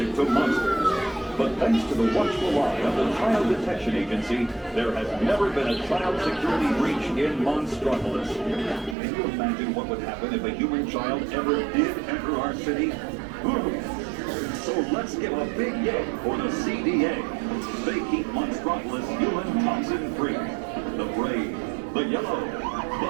attracted to monsters. But thanks to the watchful eye of the Child Detection Agency, there has never been a child security breach in Monstropolis. Can you imagine what would happen if a human child ever did enter our city? So let's give a big yay for the CDA. They keep Monstropolis human toxin free. The brave, the yellow,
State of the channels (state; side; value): drops out; left; at 9.0 s